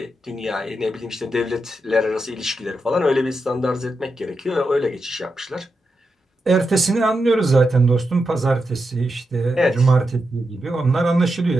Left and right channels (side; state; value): both; normal; correlation 0.87